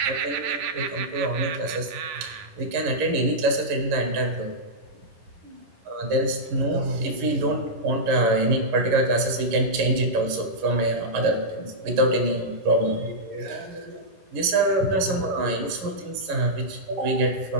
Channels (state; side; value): late; left; 11 ms